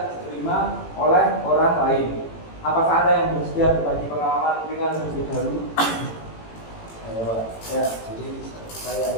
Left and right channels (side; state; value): right; late; 18 ms